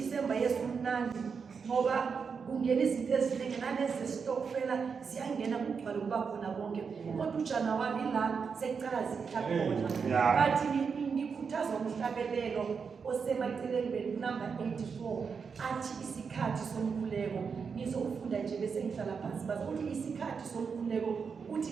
Yesu mnandi ngoba kungena izinto eziningi nalezi stokfela ziyangena kugcwala kuba khona bonke kodwa uJanuwari la sekucala zithakhona bathi ngikhuthazwa umhlabelelo osemaceleni number 84 athi isikhathi somkhuleko. Ngizofunda nje bese ngihlala phansi bazothi isikhathi somkhuleko uthi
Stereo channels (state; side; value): quieter; left; 5.8 dB